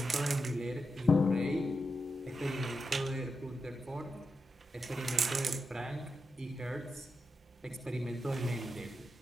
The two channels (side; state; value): both; normal; correlation 0.88